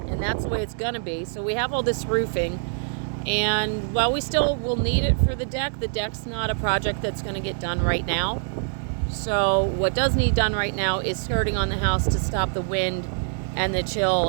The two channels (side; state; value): left; silent; digital silence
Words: that's the way it's going to be. So we have all this roofing, and while we still will need it for the deck's not a project that's going to get done right now. So what does need done right now is skirting on the house to stop the wind and the chill